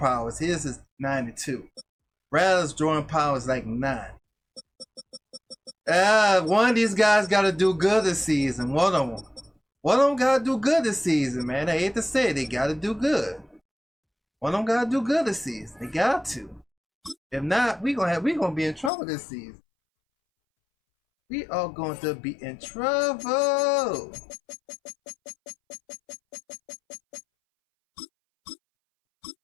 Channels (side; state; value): right; drops out; at 18.9 s